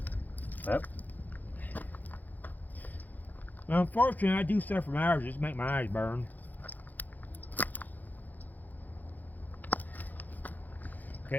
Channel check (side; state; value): right; late; 0.083 ms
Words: Yep. Well, unfortunately, I do stuff from hours just to make my eyes burn.